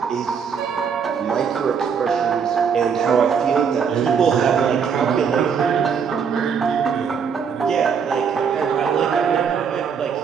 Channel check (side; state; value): left; quieter; 6.7 dB